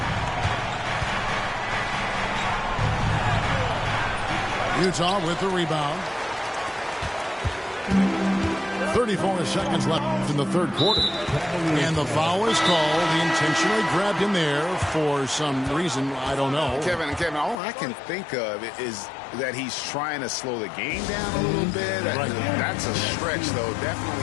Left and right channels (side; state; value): right; drops out; at 17.6 s